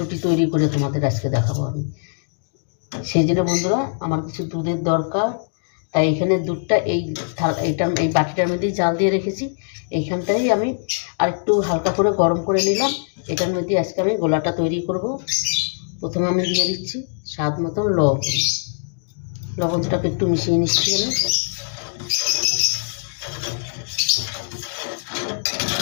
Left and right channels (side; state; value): right; silent; digital silence